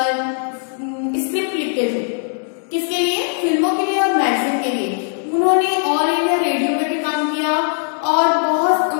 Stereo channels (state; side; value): silent; right; 57 dB below the other